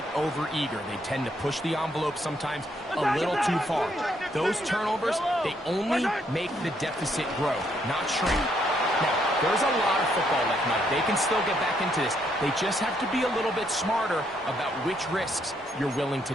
overeager. They tend to push the envelope sometimes a little too far. Those turnovers, they only make the deficit grow, not shrink. Now, there's a lot of football left, Mike. They can still get back into this. They just have to be a little bit smarter about which risks you're willing to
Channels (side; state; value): both; normal; correlation 0.73